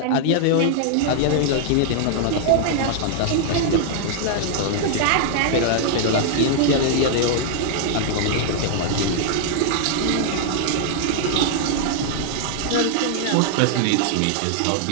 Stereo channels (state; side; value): different; both; correlation -0.01